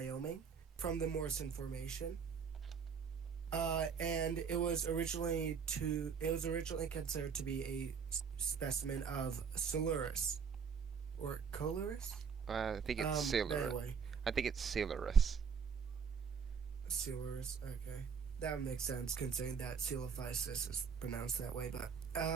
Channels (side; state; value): left; quieter; 6.4 dB